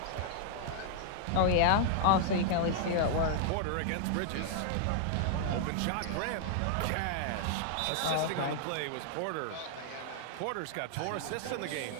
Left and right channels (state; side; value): different; both; correlation -0.01